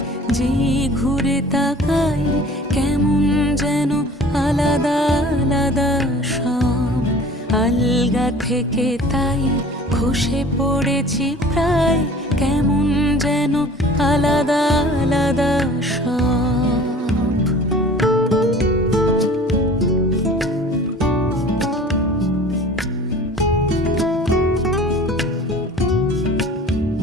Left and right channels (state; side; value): normal; both; correlation 0.45